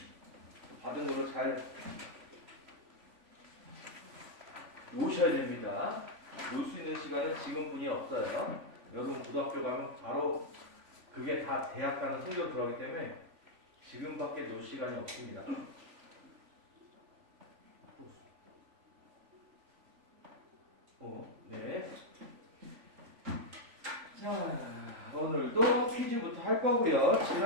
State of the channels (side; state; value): left; late; 3.5 ms